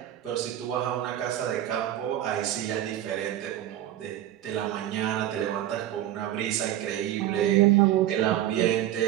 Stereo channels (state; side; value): quieter; left; 12.7 dB